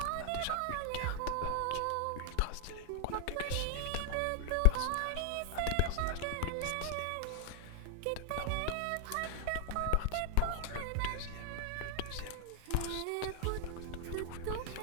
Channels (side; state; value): both; different; correlation 0.00